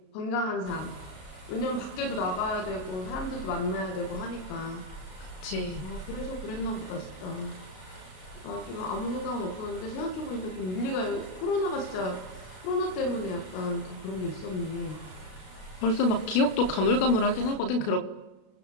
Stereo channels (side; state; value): right; late; 33 ms